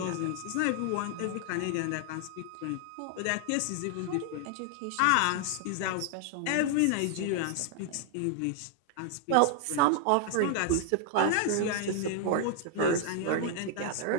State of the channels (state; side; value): different; both; correlation 0.00